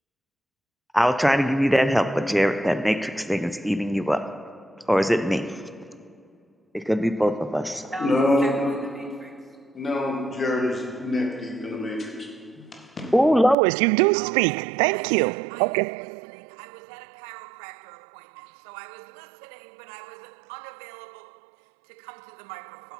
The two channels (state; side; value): drops out; left; at 13.6 s